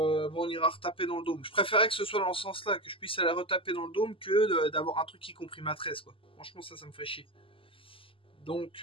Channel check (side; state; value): right; late; 0.26 ms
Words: on ira retaper dans le dôme. Je préférais que ce soit dans ce sens-là, que je puisse aller retaper dans le dôme que d'avoir un truc qui comprime à 13, quoi. Franchement, ça me ferait chier.